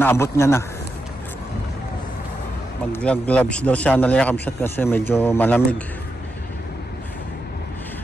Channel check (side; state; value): both; normal; correlation 0.86